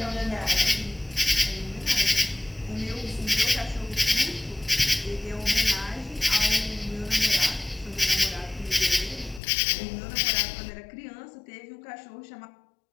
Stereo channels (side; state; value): right; drops out; at 9.4 s